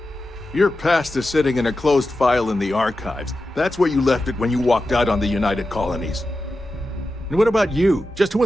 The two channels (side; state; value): both; normal; correlation 0.91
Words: Your past is sitting in a closed file in the archives. That's where you left it when you walked out on the United Colonies. And what about you? Just who